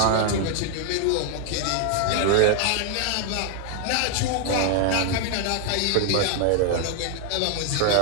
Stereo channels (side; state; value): both; different; correlation 0.00